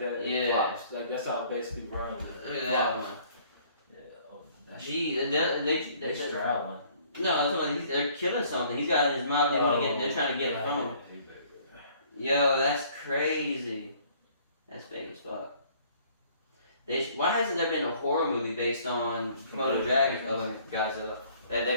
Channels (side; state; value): both; inverted; correlation -0.58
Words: It Yeah. flops. Like that's how it basically runs. It Look at that flops. one. Yeah. Oh, that's Gee, they straddling. No, they're killing something. He's got his mouth. They're trying to get it from him. Yo, that's crazy. That's fake as fuck. Why hasn't there been a horror movie based on Komodo dragons? Oh, wait, Godzilla. They've